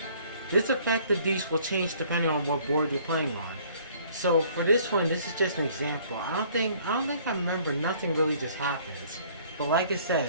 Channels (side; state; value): both; inverted; correlation -0.57